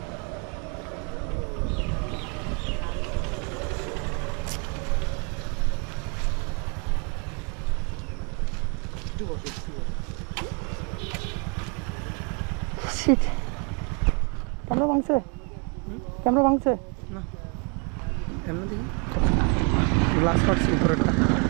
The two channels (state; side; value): quieter; left; 35.3 dB